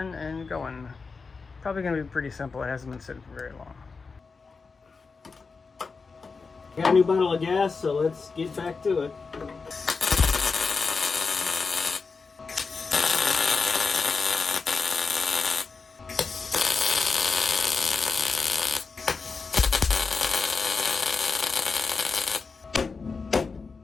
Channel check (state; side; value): quieter; right; 4.7 dB